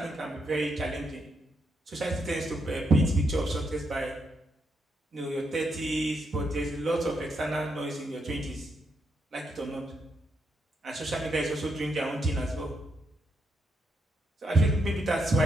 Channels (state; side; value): normal; both; correlation 0.80